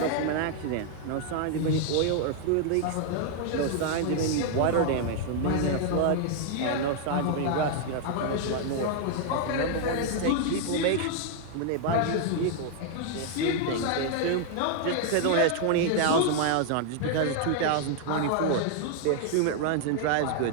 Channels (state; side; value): different; both; correlation 0.00